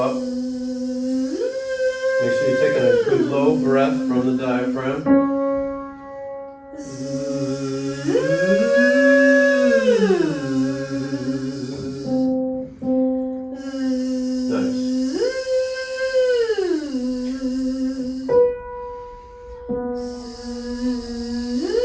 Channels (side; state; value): both; identical; correlation 1.00